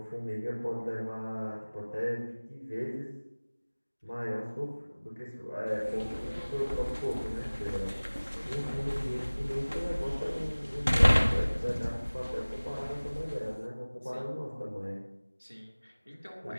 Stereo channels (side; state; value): both; inverted; correlation -1.00